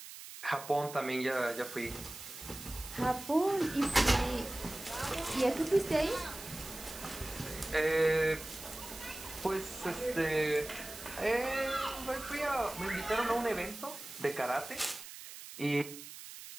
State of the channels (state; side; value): noise; right; hiss, 13 dB below the sound